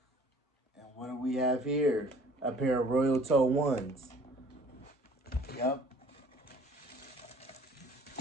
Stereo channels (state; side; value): normal; both; correlation 0.53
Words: and what do we have here? A pair of Royal Toe 1s. Yep.